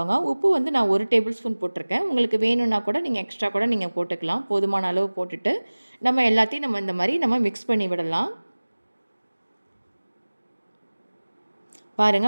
உப்பு வந்து நான் 1 டேபிள் ஸ்பூன் போட்டிருக்கேன். உங்களுக்கு வேணும்னா கூட நீங்கள் எக்ஸ்ட்ரா கூட நீங்கள் போட்டுக்கலாம். போதுமான அளவு போட்டுட்டு நம்ம எல்லாத்தையும் நம்ம இந்த மாதிரி நம்ம மிக்ஸ் பண்ணி விடலாம்.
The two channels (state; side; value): inverted; both; correlation -1.00